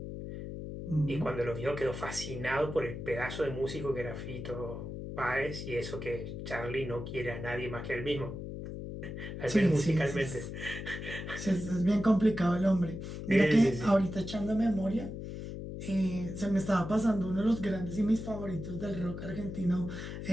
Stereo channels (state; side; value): noise; left; hum, 7 dB below the sound